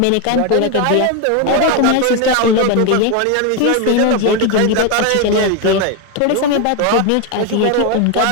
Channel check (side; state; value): both; different; correlation 0.02